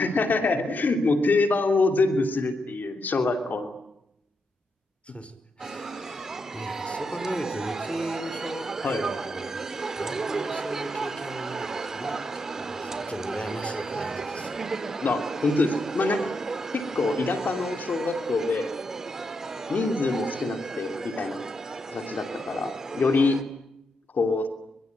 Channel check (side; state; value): both; normal; correlation 0.82